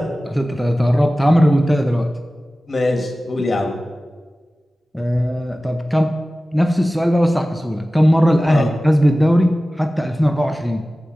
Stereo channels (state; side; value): normal; both; correlation 0.96